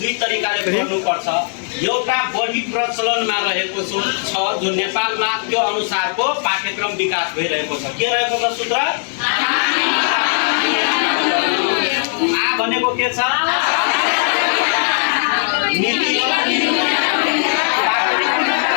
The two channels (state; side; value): silent; right; 65 dB below the other